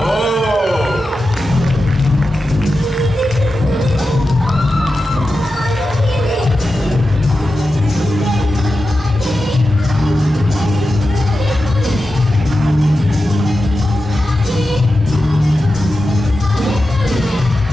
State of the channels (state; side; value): normal; both; correlation 0.92